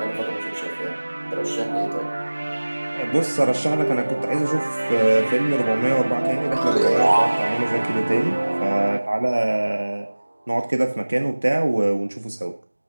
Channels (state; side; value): inverted; both; correlation -1.00